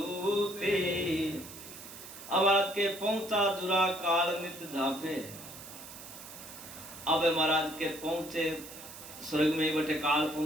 अब महाराज के पहुंचा जुरा काल नित जापे अब महाराज के पहुंचे स्वर्ग में बटे काल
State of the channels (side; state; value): right; noise; hiss, 14 dB below the sound